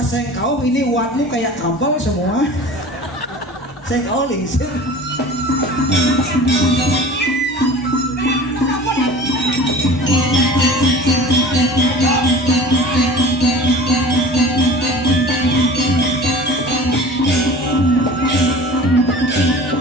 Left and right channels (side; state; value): both; normal; correlation 0.40